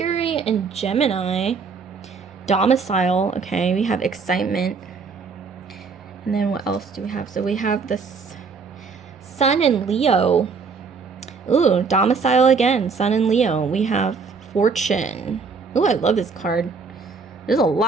and Gemini. Domicile. Okay, we have excitement. And then what else do we have? So we have this Sun in Leo. Ooh, domicile again. Sun in Leo. We have fortune. Ooh, I love this card. There's a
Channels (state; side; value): quieter; left; 5.0 dB